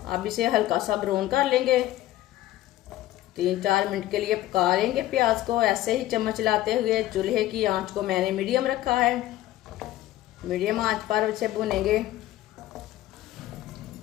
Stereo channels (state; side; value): quieter; right; 15.1 dB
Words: अब इसे हल्का सा ब्राउन कर लेंगे। 3-4 मिनट के लिए पका लेंगे प्याज को, ऐसे ही चम्मच लाते हुए। चूल्हे की आंच को मैंने मीडियम रखा है। मीडियम आंच पर इसे भुनेंगे।